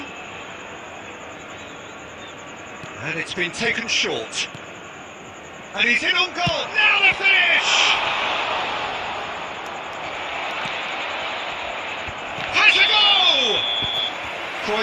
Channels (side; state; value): both; identical; correlation 1.00